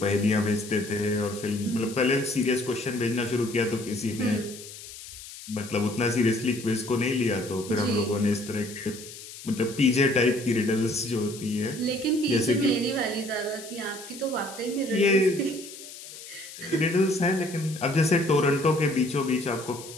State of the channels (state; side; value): noise; left; hiss, 14 dB below the sound